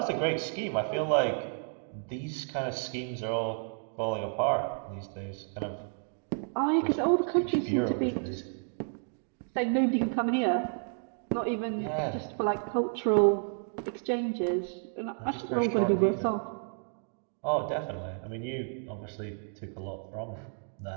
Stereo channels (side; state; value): left; silent; 57 dB below the other